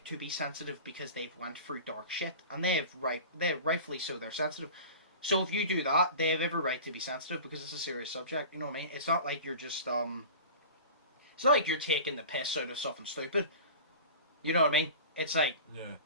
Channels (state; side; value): inverted; both; correlation -0.37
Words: to be sensitive because they've went through dark shit, and they're rightfully so. They're sensitive. So if you do that, they have every right to be sensitive because it's a serious subject. You know what I mean? It's not like you're just it's not like you're taking the piss out of something stupid. You know what I mean? It's like